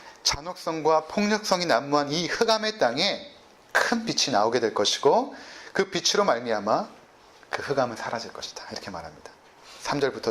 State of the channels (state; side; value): identical; both; correlation 1.00